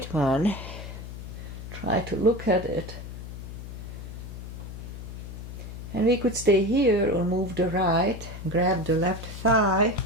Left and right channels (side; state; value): left; noise; hum, 10 dB below the sound